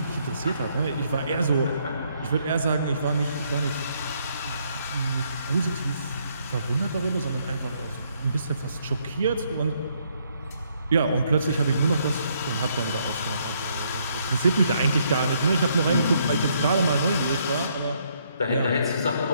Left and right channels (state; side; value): inverted; both; correlation -0.71